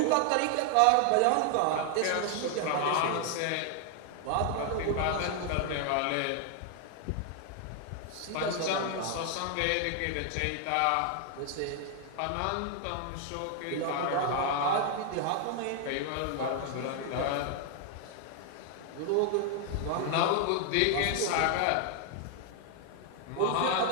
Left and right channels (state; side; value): different; both; correlation 0.00